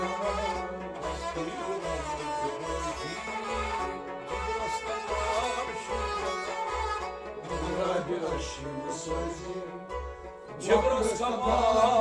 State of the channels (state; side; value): identical; both; correlation 1.00